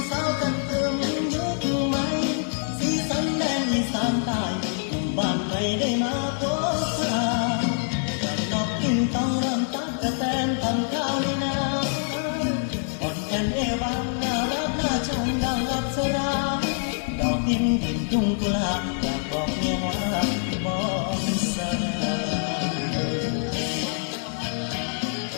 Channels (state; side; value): silent; right; 62 dB below the other